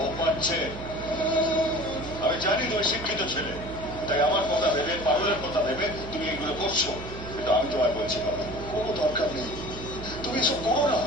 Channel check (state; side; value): noise; right; hum, 11 dB below the sound